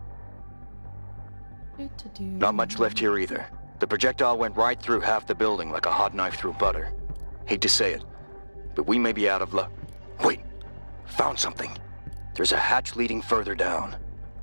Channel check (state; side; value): inverted; both; correlation -1.00